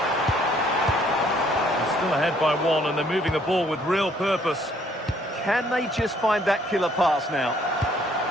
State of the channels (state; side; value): normal; both; correlation 0.64